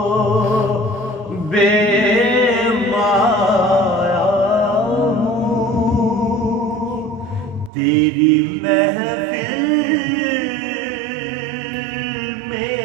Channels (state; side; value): drops out; left; at 7.7 s